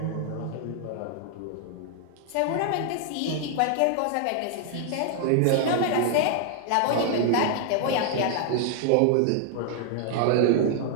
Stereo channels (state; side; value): different; both; correlation 0.00